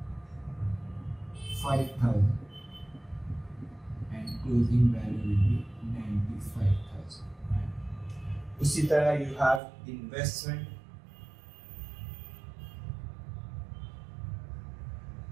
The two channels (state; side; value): drops out; left; at 9.6 s